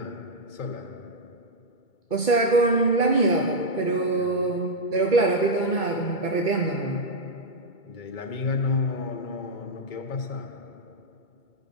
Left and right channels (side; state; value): right; late; 2.2 ms